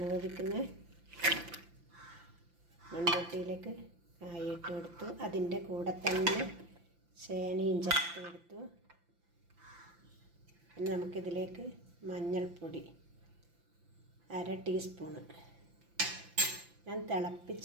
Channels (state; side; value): late; left; 5.8 ms